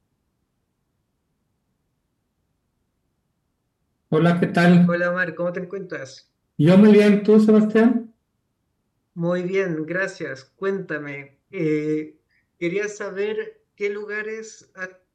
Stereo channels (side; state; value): both; identical; correlation 1.00